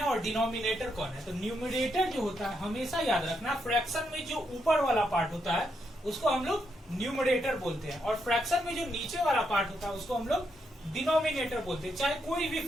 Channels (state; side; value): normal; both; correlation 0.79